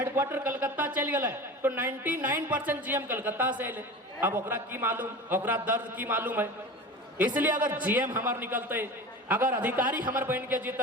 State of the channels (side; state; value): both; normal; correlation 0.33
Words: कलकत्ता चल गए तो 99% जीएम कलकत्ता से ले। अब ओकरा की मालूम, ओकरा दर्द की मालूम है। इसलिए अगर जीएम हमार निकलते, अगर अधिकारी हमार बन के